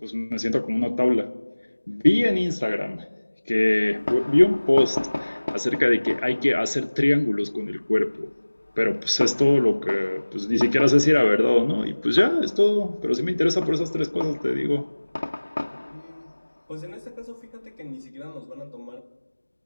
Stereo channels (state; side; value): inverted; both; correlation -1.00